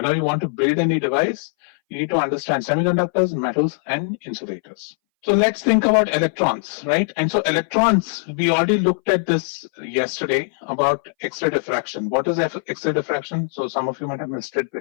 you want to build any device, you need to understand semiconductors, metals, and insulators. So let's think about electrons, right? And so electrons, we already looked at this yesterday about X-ray diffraction. What is X-ray diffraction? So some of you might have missed it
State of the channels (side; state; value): right; silent; 62 dB below the other